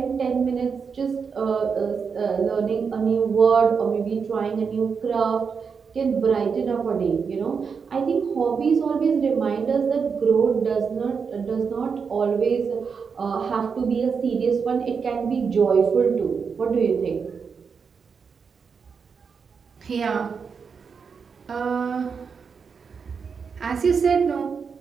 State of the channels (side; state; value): left; quieter; 5.9 dB